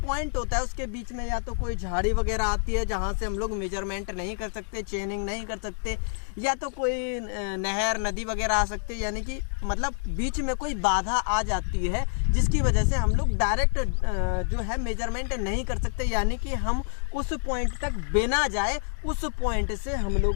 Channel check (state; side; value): silent; right; digital silence